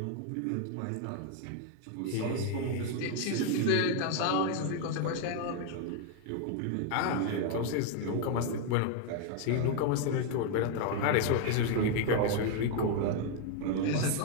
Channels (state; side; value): different; both; correlation 0.00